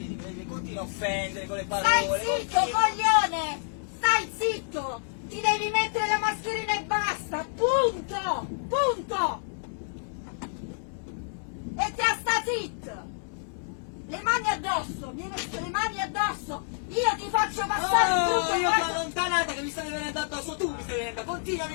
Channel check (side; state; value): right; silent; 59 dB below the other